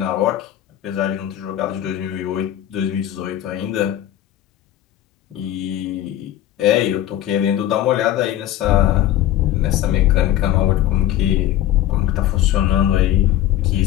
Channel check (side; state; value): right; quieter; 12.6 dB